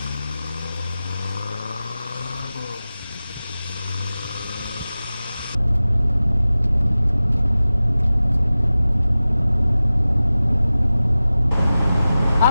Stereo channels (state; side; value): inverted; both; correlation -0.96